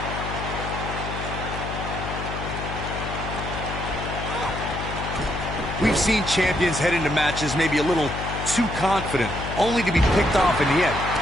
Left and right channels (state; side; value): noise; left; hum, 6 dB below the sound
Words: We've seen champions head into matches maybe a little too confident, only to be picked off in the end.